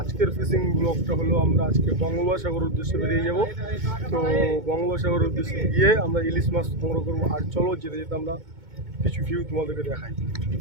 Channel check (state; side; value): late; left; 2.2 ms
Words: ফিশিং ব্লগটা হলো আমরা আজকে বঙ্গোপসাগর উদ্দেশ্যে বেরিয়ে যাব। তো বঙ্গোপসাগর উদ্দেশ্যে গিয়ে আমরা ইলিশ মাছ সংগ্রহ করবো। আর চলো যেতে যেতে আমরা কিছু ভিউ তোমাদেরকে দেখাই।